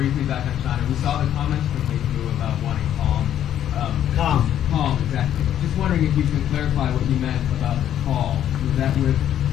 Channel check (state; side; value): quieter; right; 10.7 dB